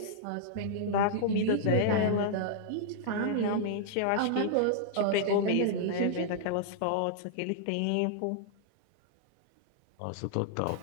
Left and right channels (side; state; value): both; different; correlation -0.01